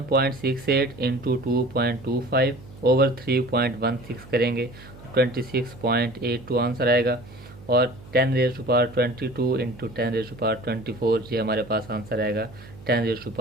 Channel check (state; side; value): noise; right; hum, 19 dB below the sound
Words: इंटू 2.25 ओवर 3.16 करेंगे तो 26.82 आंसर आएगा, और 10⁻22 इंटू 10⁻24 ये हमारे पास आंसर आएगा